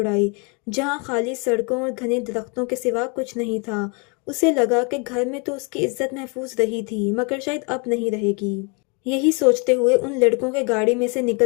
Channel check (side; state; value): right; quieter; 33.3 dB